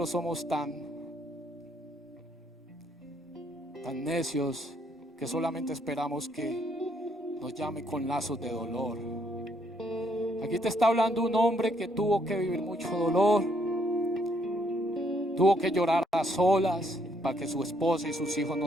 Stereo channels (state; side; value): normal; both; correlation 0.70